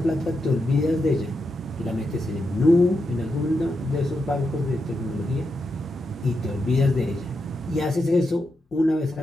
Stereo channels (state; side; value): normal; both; correlation 0.85